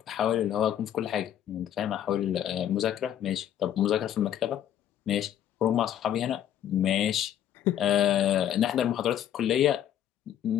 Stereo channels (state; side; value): quieter; right; 10.6 dB